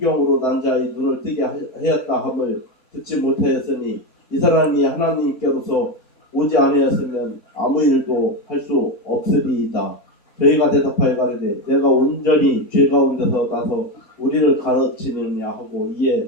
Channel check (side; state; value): both; normal; correlation 0.14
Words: 난 자의 눈을 뜨게 하였다 함을 듣지 못하였으니 이 사람이 하나님께로서 오지 아니하였으면 아무 일도 할 수 없으리이다. 저희가 대답하여 가로되 내가 온전히 죄 가운데서 나서 우리를 가르치느냐 하고